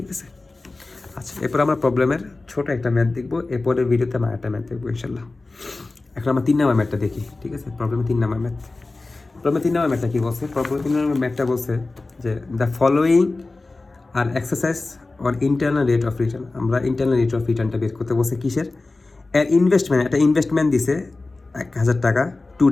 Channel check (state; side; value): quieter; right; 3.3 dB